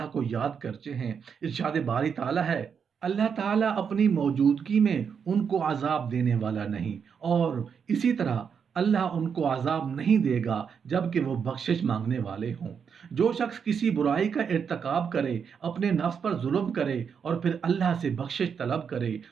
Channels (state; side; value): quieter; left; 6.8 dB